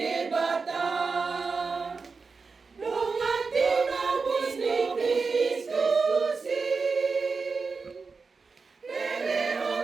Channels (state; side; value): quieter; left; 4.6 dB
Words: Dongati nabis ni Kristus,